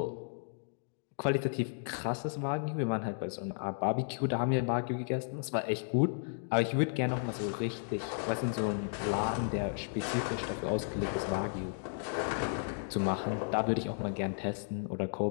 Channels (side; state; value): right; silent; digital silence